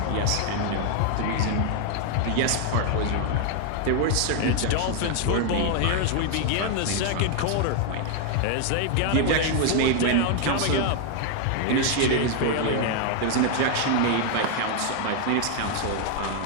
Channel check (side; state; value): both; different; correlation 0.00